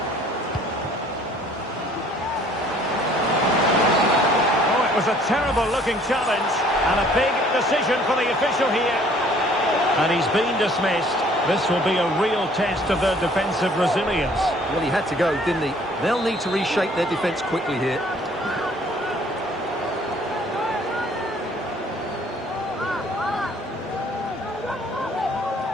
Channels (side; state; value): both; normal; correlation 0.57